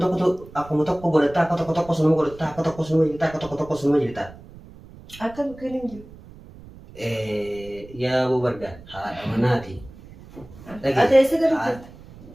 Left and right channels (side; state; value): right; noise; rumble, 19 dB below the sound